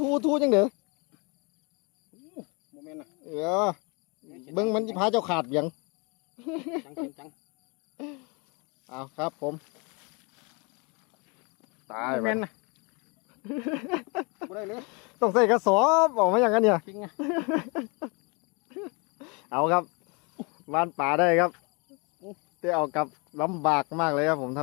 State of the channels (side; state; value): right; quieter; 31.1 dB